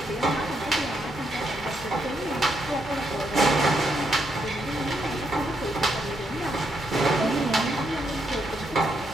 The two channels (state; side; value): normal; both; correlation 0.78